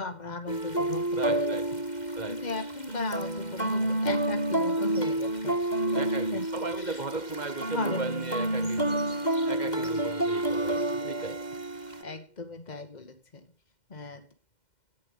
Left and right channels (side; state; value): right; late; 2.1 ms